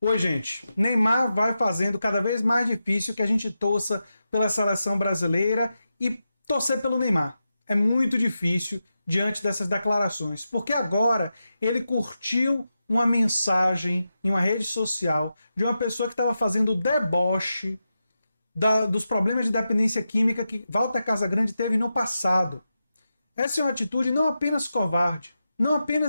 Oi, gente. Neymar vai fazendo cada vez mais difícil que a gente torça pela seleção brasileira e torcer pelo Neymar. É muito difícil diante dessas declarações, porque agora ele curtiu uma mensagem em uma rede social de uma pessoa que estava fazendo deboche dos problemas de dependência química que Walter Casagrande teve no passado. Essa é uma atitude não apenas covarde, não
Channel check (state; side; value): inverted; both; correlation -0.89